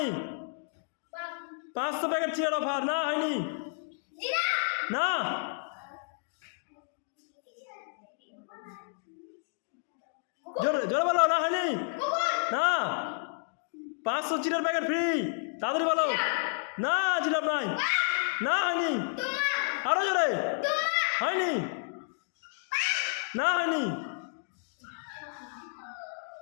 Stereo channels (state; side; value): silent; right; digital silence